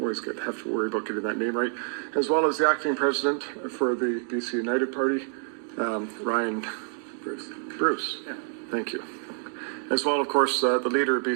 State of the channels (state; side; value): silent; left; 60 dB below the other